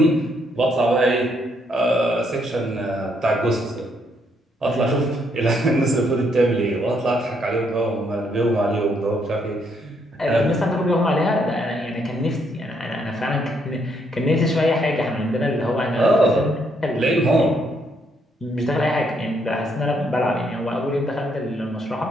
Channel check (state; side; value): normal; both; correlation 0.73